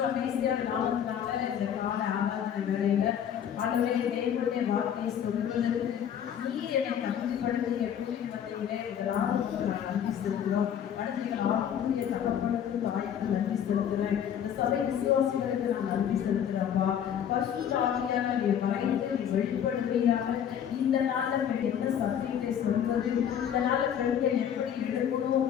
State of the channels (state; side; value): quieter; right; 9.1 dB